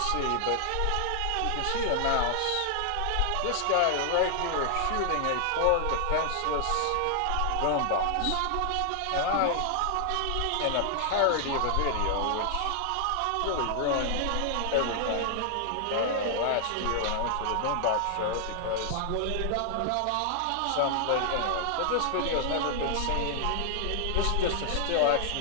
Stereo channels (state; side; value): different; both; correlation 0.00